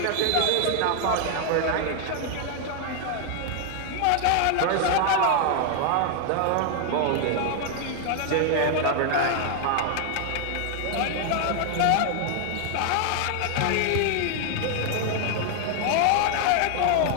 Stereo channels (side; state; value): both; different; correlation 0.00